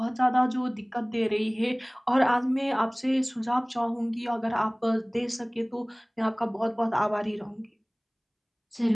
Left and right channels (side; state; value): both; identical; correlation 1.00